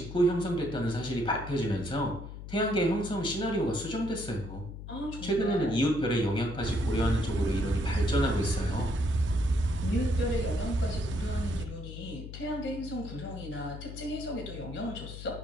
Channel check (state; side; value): noise; left; hum, 10 dB below the sound